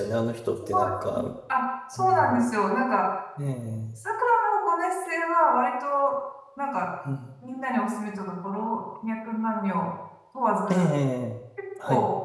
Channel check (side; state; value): both; identical; correlation 1.00